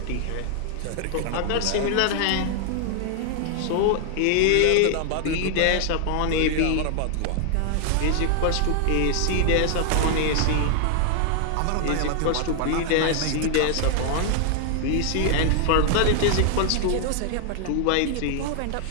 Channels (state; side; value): different; both; correlation 0.00